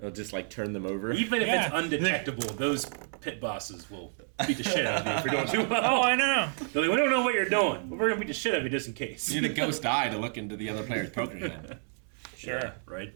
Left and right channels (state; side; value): silent; left; 58 dB below the other